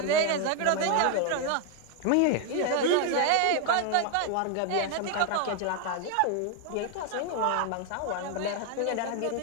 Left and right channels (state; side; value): different; both; correlation 0.01